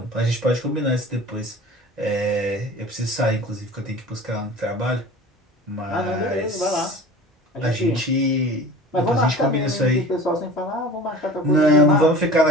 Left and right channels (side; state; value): both; normal; correlation 0.40